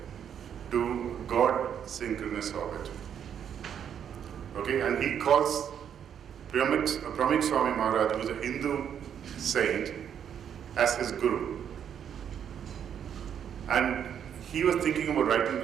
to God-synchronous orbit. Okay, and he calls Pramik Swami Maharaj, who is a Hindu saint, as his guru. And he was thinking about writing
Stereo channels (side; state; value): left; quieter; 8.7 dB